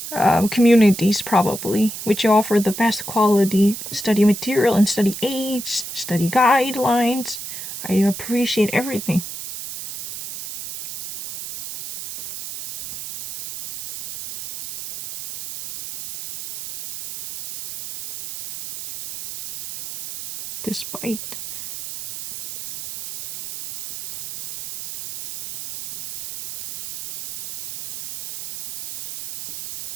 communities probably, which offer the best quality study material and study aids, study guidelines. I appreciate everything. Despite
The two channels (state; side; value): noise; right; hiss, 8 dB below the sound